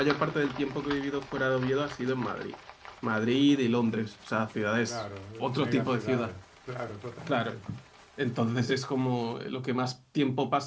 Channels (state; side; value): identical; both; correlation 1.00